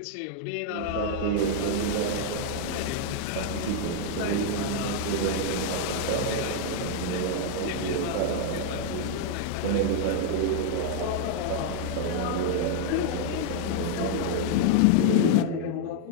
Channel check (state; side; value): different; both; correlation 0.00